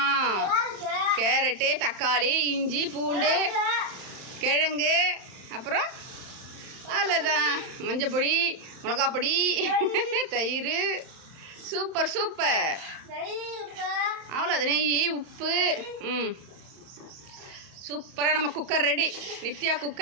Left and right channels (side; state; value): left; late; 31 ms